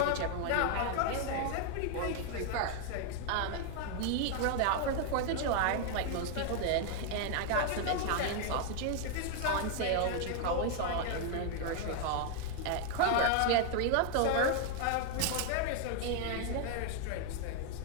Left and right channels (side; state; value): both; different; correlation 0.00